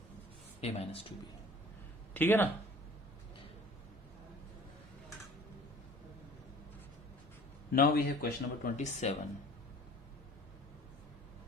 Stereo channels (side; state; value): both; normal; correlation 0.47